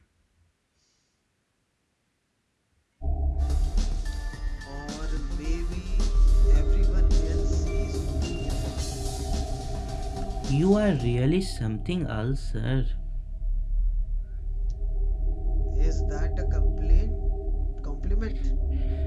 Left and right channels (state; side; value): identical; both; correlation 1.00